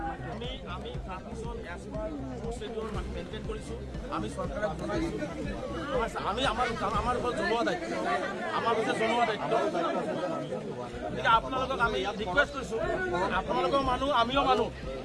আমি মেইনটেইন কৰিছোঁ, আমি চৰকাৰক জনাইছোঁ, আমি আমাৰ ওপৰত জনোৱা দায়িত্ব, আমাৰ ওপৰত জনোৱা দায়িত্ব। গতিকে আপোনালোকক আমি ৰিকুৱেষ্ট কৰিছোঁ, আপোনালোকৰ মানুহ, আমিও মানুহ।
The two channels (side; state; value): both; identical; correlation 1.00